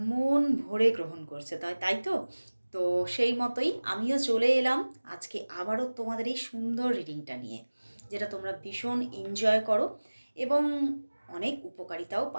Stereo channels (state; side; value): inverted; both; correlation -1.00